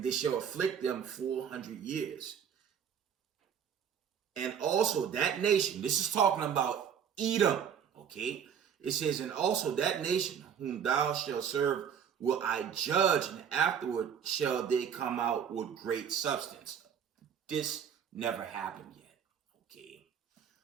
shall afflict them 400 years. And also that nation, this is talking about Edom, okay? It says, and also that nation whom thou shalt serve will I judge, and afterward shall they come out with great substance. This never happened yet, okay?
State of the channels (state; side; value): quieter; left; 8.0 dB